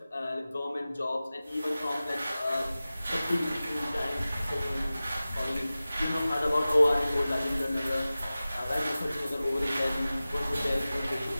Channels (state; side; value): inverted; both; correlation -0.97